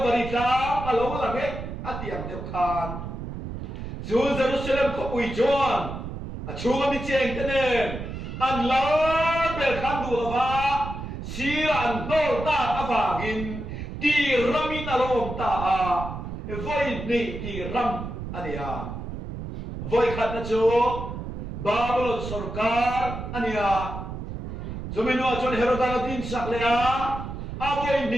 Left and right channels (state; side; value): noise; right; rumble, 7 dB below the sound